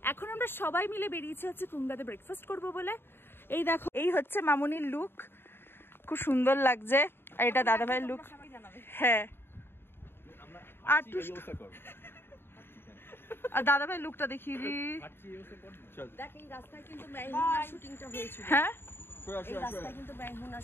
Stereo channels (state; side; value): late; right; 0.11 ms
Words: এখন আমরা সবাই মিলে বেরিয়েছি হচ্ছে কুঙ্গাতে ব্রেকফাস্ট করব বলে। এই দেখো, এই হচ্ছে মামুনির লুক, খুব সুন্দর লাগছে। আর এটা দাদা ভাইয়ের লুক। হ্যাঁ, আর দাদা ভাই লুকটা দেখিয়ে দি। দেখ, এই রাস্তায় কিন্তু মেহমুনা শুটিংটা হয়েছিল। হ্যাঁ, এই রাস্তায় কিন্তু মেহমুনা